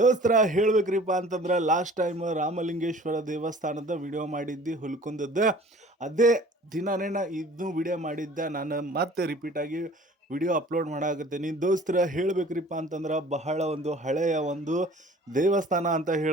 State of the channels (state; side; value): normal; both; correlation 0.48